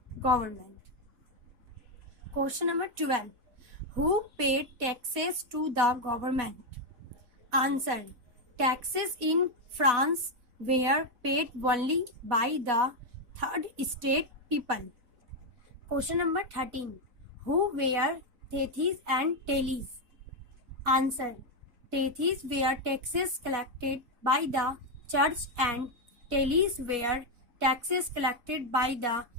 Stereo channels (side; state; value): left; late; 4.1 ms